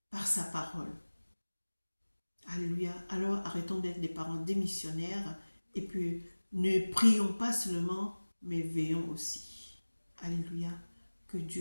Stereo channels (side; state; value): both; inverted; correlation -1.00